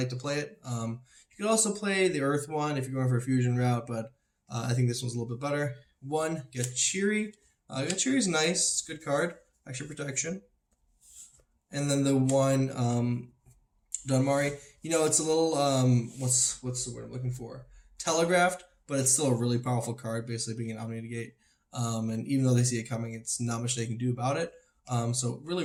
to play it. You could also play the Earth one if you're going for a fusion route, but I think this one's a little bit better. 1, Gachiri. Gachiri's nice. It's a good card. Extra protection. And then the 1, Dunmari. It's a little, what's the word I'm looking for? Telegraphed, but it's still a really powerful card, basically being an Omni-Negate. And even though they see it coming, it's not much they can do about it. So really,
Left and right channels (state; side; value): identical; both; correlation 1.00